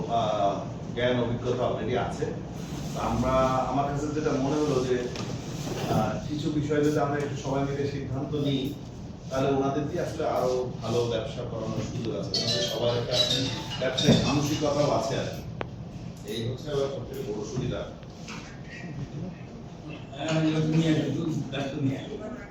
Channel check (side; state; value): both; identical; correlation 1.00